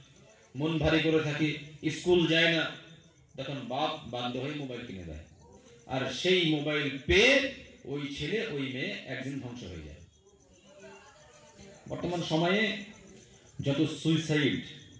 মন ভারী করে থাকি, স্কুল যায় না। তখন বাপ বাধ্য হয়ে মোবাইল কিনে দেয়, আর সেই মোবাইল পেয়ে ওই ছেলে ওই মেয়ে একদিন ধ্বংস হয়ে যায়। বর্তমান সময়ে যত সুইসাইড,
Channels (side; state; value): both; identical; correlation 1.00